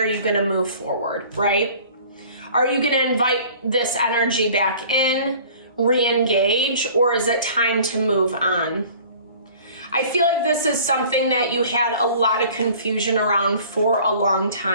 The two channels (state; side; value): inverted; both; correlation -0.48